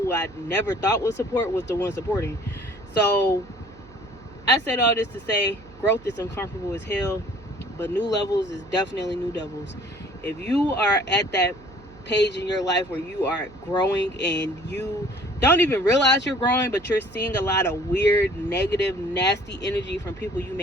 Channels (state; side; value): noise; right; hum, 23 dB below the sound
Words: I never thought would support was the ones supporting. So I said all this to say, growth is uncomfortable as hell, but new levels is definitely new levels. If you are at that page in your life where you are growing and you don't even realize you're growing, but you're seeing a lot of weird, negative, nasty energy from people you